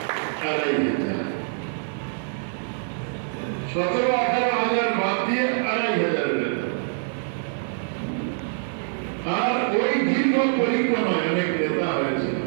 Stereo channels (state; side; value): silent; left; digital silence